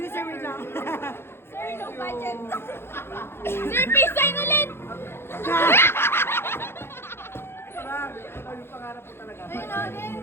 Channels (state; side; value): late; right; 0.11 ms